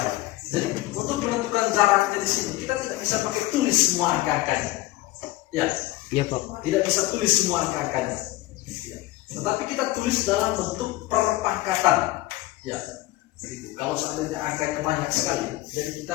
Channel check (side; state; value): right; quieter; 17.8 dB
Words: Jadi untuk menentukan jaraknya di sini kita tidak bisa pakai tulis semua angka-angkanya. Ya, Iya Pak. tidak bisa tulis semua angka-angkanya. Ya. Tetapi kita tulis dalam bentuk perpangkatan. Ya. Gitu. Kalau seandainya angkanya banyak sekali, jadi